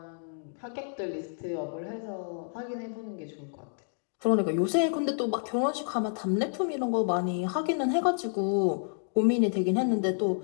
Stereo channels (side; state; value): right; silent; digital silence